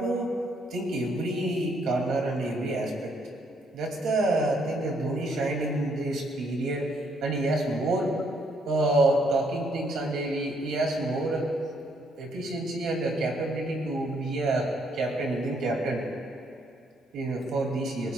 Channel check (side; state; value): both; normal; correlation 0.71